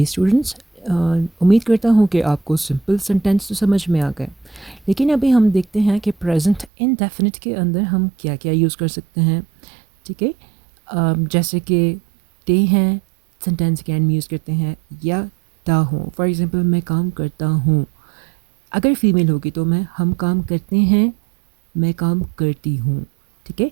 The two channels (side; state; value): left; drops out; at 6.7 s